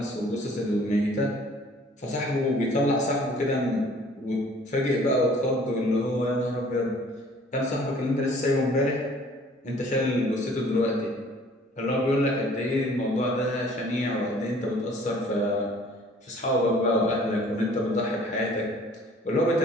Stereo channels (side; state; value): both; normal; correlation 0.54